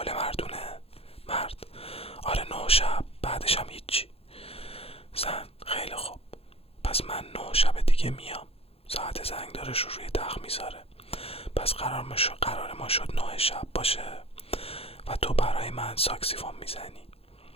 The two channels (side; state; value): right; late; 0.28 ms